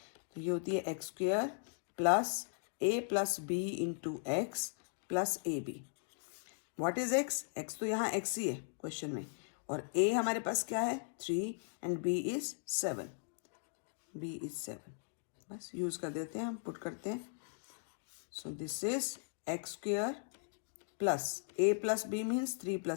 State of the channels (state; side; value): silent; right; digital silence